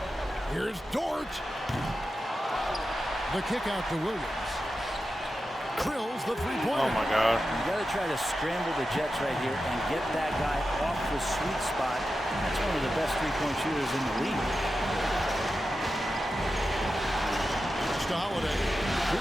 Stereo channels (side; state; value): both; normal; correlation 0.91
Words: Here's Dort. The kick out to Williams. Drills the three-pointer. Oh my God. You got to try to scramble the Jets right here and get that guy off the sweet spot. That's one of the best three-point shooters in the league. To Holiday.